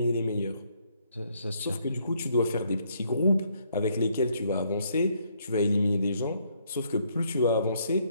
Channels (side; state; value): both; inverted; correlation -0.70